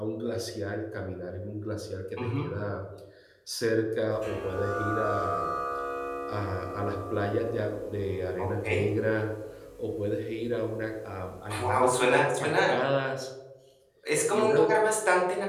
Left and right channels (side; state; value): both; identical; correlation 1.00